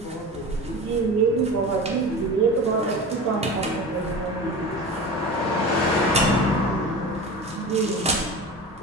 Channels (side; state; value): both; normal; correlation 0.32